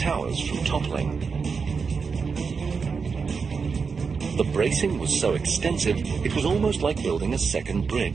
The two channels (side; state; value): left; quieter; 5.4 dB